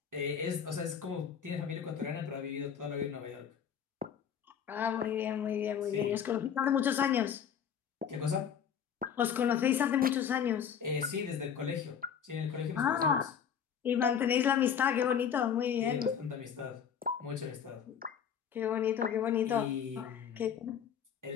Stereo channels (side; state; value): right; quieter; 8.0 dB